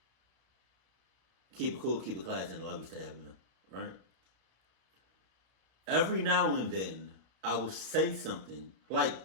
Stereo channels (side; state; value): left; late; 32 ms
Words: keep it cool, keep it classy, and I love you, stay happy, right? Every now and then, I will say something, like